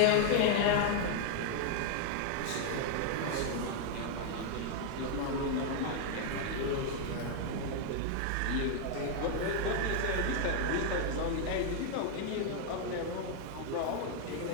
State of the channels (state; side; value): different; both; correlation 0.00